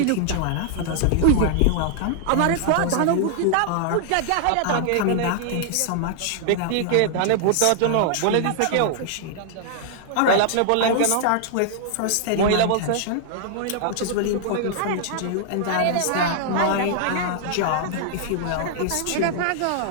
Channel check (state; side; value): different; both; correlation -0.01